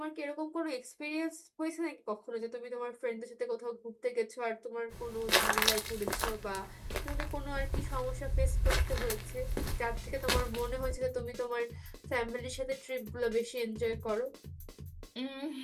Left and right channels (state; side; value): identical; both; correlation 1.00